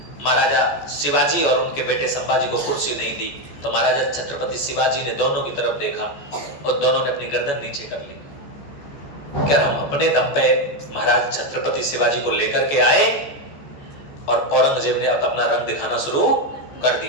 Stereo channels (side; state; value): right; late; 14 ms